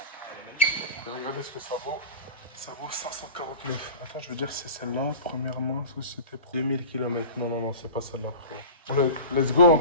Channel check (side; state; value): both; inverted; correlation -0.33